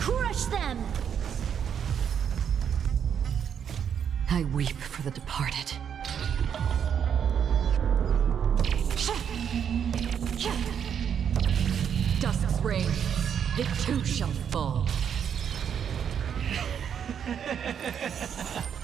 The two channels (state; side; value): quieter; left; 8.1 dB